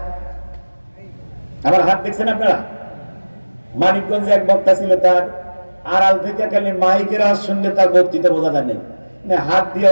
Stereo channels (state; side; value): inverted; both; correlation -1.00